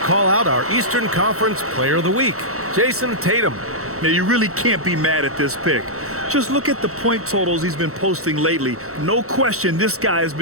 out our Eastern Conference Player of the Week, Jayson Tatum. Now, you really can't be mad at this pick. Just look at the point totals he's been posting lately. No question, this guy has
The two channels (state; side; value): late; left; 0.64 ms